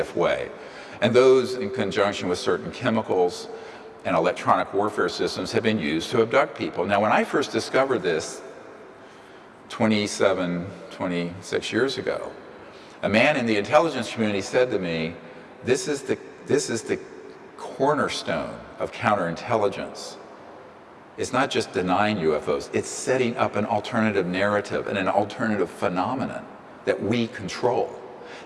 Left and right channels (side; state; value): both; identical; correlation 1.00